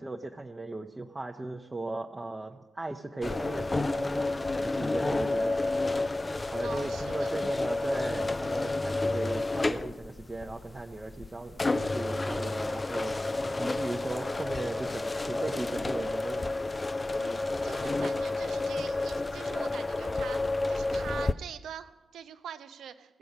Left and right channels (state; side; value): normal; both; correlation 0.96